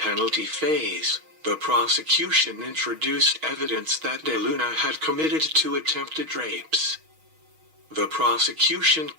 phase, the prosecution introduced evidence that De Luna had committed 2 attempted rapes. The prosecution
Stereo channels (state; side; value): late; left; 6.3 ms